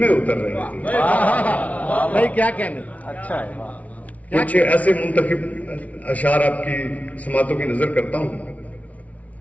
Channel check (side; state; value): right; late; 0.068 ms